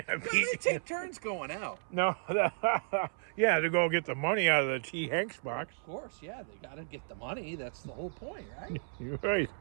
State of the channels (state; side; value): silent; left; 55 dB below the other